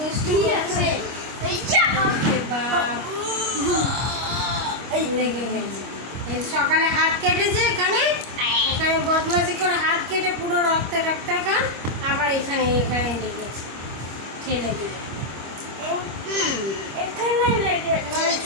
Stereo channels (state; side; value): late; left; 25 ms